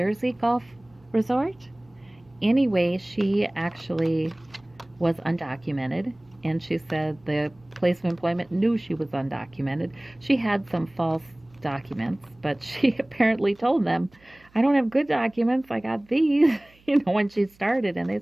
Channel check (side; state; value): right; noise; hum, 30 dB below the sound